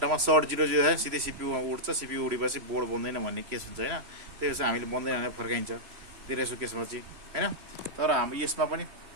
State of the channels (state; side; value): late; left; 3.0 ms